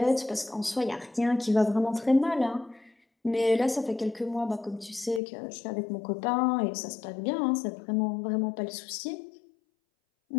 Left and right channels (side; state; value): right; drops out; at 5.2 s